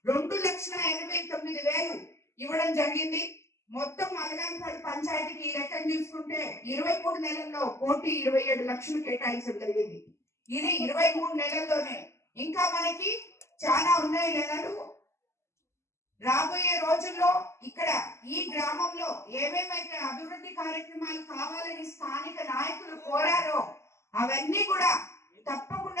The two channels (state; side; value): late; right; 0.13 ms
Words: 2,89,000 ఇవ్వడం జరిగింది. మొత్తం అలగానిపాడు పంచాయతీకి ఈ లెక్కను చూసుకుంటే 23 నెలల్లో 1,27,00,000 కేటాయించడం జరిగింది. ఇది 23 నెలల్లోనే. ఇంకా మనకి చాలా ఉన్నాయి నెలలు. రాబోయే రోజుల్లో ఇక్కడ ఈ గ్రామంలో ఏమేమైతే అభివృద్ధి కార్యక్రమాలు కావాలని స్థానిక నాయకులు కోరారో అవన్నీ కూడా